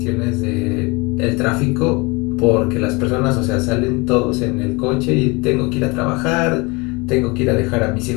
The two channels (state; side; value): quieter; right; 26.6 dB